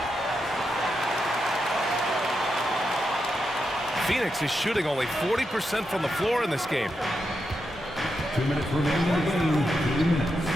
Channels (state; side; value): normal; both; correlation 0.86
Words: Phoenix is shooting only 40% from the floor in this game. 2 minutes remaining in the game. 2 minutes.